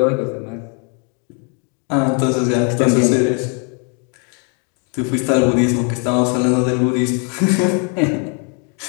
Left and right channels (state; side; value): quieter; right; 38.7 dB